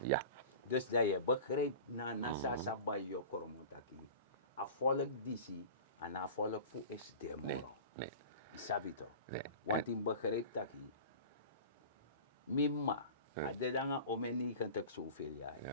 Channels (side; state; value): both; inverted; correlation -0.37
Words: Ja. Dus dat je begrijpt na nasa bij je koromotaki. A volk disi, en a volk fu is demoro. Nee. Isabito. Nee. Want in begrijpt taki. Mimma. A de danga omeni kan tak zoveel jaar.